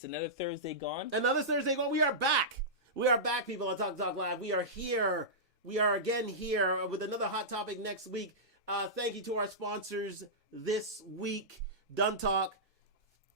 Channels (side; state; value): both; normal; correlation -0.15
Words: another Thursday gone. Another Thursday gone. We are back. We are back, people, on Talk Live. We are here. We are again here with another hot topic next week. Thank you to our sponsors this week, Done Talk.